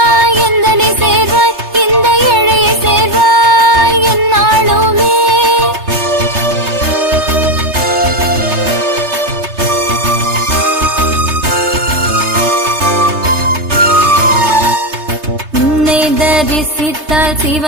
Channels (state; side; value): late; left; 3.3 ms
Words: எந்தனை சேர்வாய் இந்த ஏழையை சேர்வாய் என்னாலுமே உன்னை தரிசித்தால்